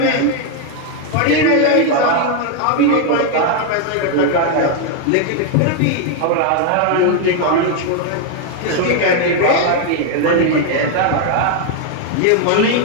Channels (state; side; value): different; both; correlation 0.01